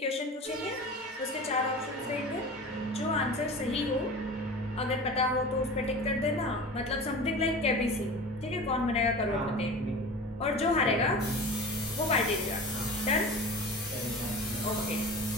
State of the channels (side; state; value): both; normal; correlation 0.35